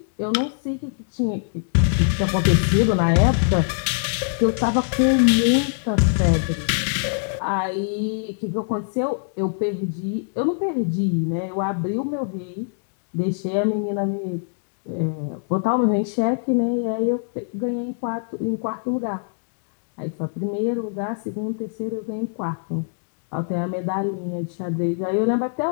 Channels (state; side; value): silent; right; digital silence